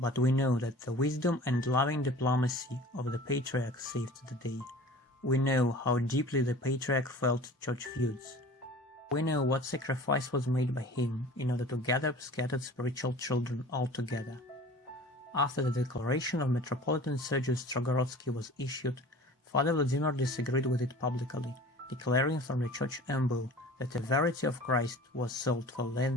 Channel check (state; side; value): normal; both; correlation 0.43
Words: we know that the wisdom and loving diplomacy of the Patriarch saved the day. We know how deeply the Patriarch felt church feuds. We know what sacrifice was made by him in order to gather scattered spiritual children all together. After the declaration of Metropolitan Sergius Strogorodski was issued, Father Vladimir disagreed with it publicly, declaring from the church embo that the verity of Christ was sold for